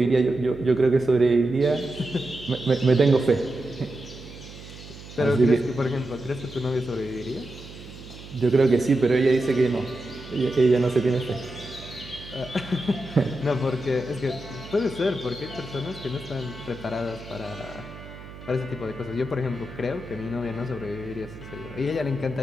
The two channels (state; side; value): noise; right; hum, 16 dB below the sound